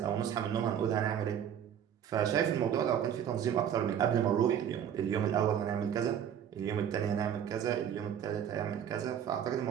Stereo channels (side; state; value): left; quieter; 9.2 dB